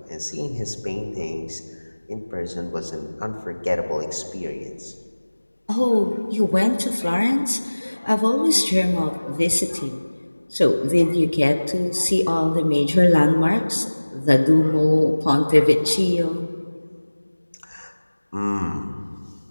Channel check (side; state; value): both; inverted; correlation -1.00